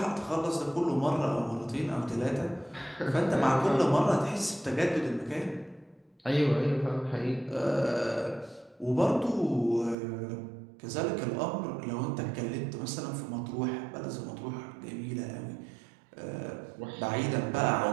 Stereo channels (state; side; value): drops out; left; at 10.0 s